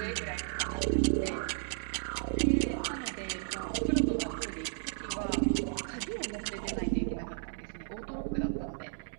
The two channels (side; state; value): left; silent; digital silence